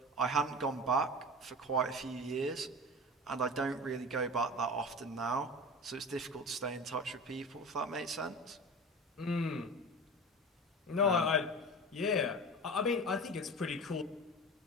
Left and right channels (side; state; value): both; normal; correlation 0.32